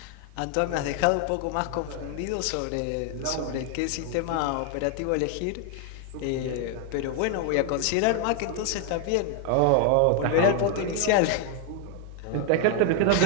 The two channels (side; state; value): both; different; correlation 0.00